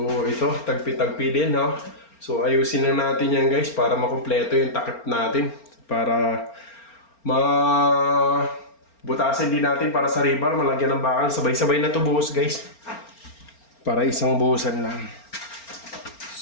ito. Tagpi-tagpi din no. So ayusin na natin yan guys para makumpleto yung takip natin. Para butasin din natin para sa rebar. Malagyan ng bakal. Sabay-sabay na to buhos guys. Para isang buhusan lang.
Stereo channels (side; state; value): right; late; 4.4 ms